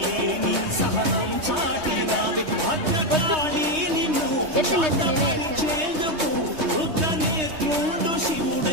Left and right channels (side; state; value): left; late; 3.2 ms